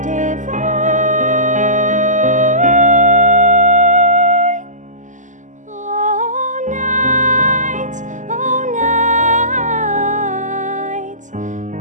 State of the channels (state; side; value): late; left; 0.36 ms